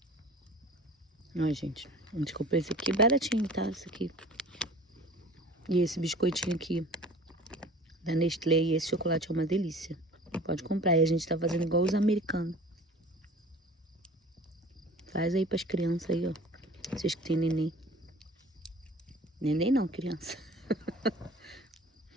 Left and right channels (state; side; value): normal; both; correlation 0.44